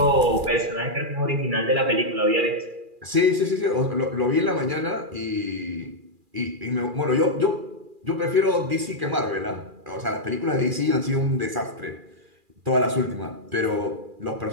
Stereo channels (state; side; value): late; left; 2.4 ms